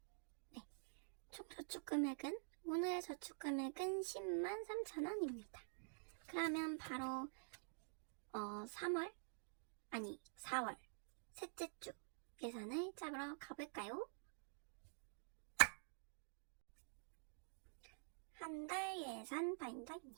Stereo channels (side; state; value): left; silent; digital silence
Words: 네, 총 저축금액은 오늘의 저축금액은 10만 3,000원입니다. 그러면 바로 4월 셋째 주 예산을 잡으러 가볼까요? 한 달 예산